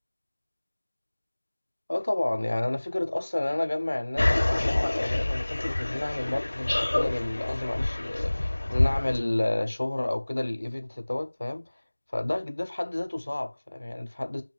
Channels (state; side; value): inverted; both; correlation -1.00